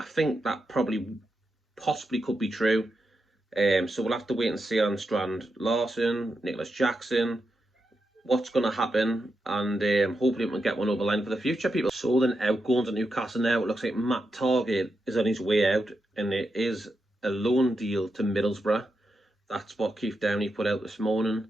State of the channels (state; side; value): normal; both; correlation 0.86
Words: think that possibly could be true. So we'll have to wait and see on Strand Larsen, Nicholas Jackson, what's going to happen, and hopefully we can get one over the line for the future, people. So then outgoings at Newcastle now, it looks like Matt Targett is on his way out, and it is a loan deal to Middlesbrough. That's what Keith Downey put out this morning.